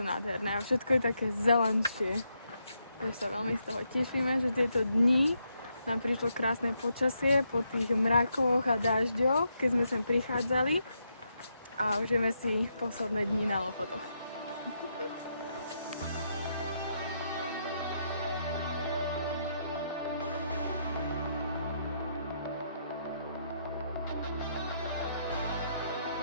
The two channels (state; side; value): inverted; both; correlation -0.79